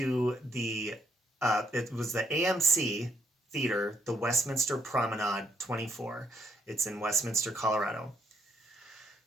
it was the AMC Theater, the Westminster Promenade 24. It's in Westminster, Colorado.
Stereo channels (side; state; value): both; normal; correlation 0.73